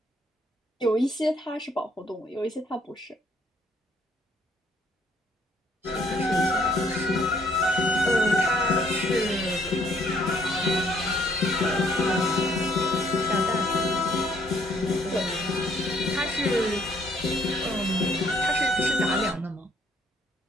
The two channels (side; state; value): both; normal; correlation 0.66